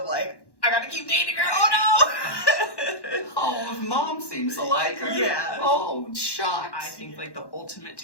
like, I gotta keep dating her. Oh no! Oh, mom seems to like her. Yeah. Oh, shucks. I think like the ultimate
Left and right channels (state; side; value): late; right; 1.1 ms